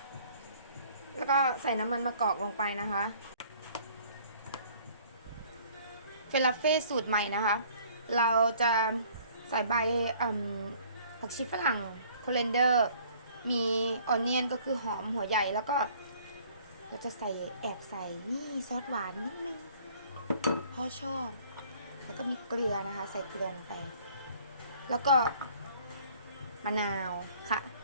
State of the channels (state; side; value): inverted; both; correlation -0.56